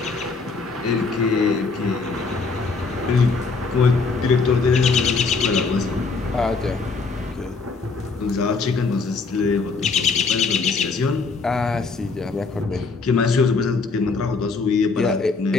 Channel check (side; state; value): right; quieter; 4.3 dB